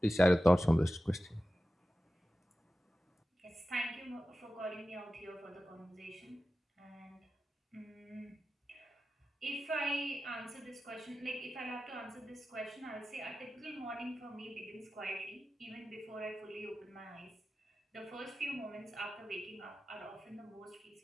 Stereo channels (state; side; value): normal; both; correlation 0.94